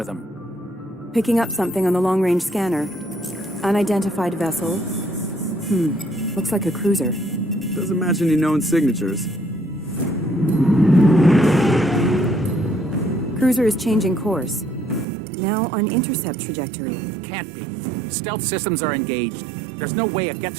them. Picking up something on the long-range scanner. Unidentified vessel. Looks like a cruiser. Doesn't match any known signatures. Cruiser is changing course. Now on intercept trajectory. Can't be. Stealth systems are engaged. There's no way a Geth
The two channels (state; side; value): drops out; left; at 15.1 s